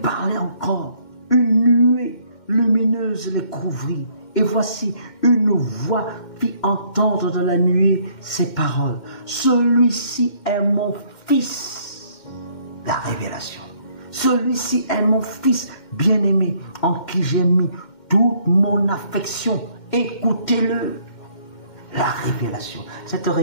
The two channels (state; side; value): late; right; 2.1 ms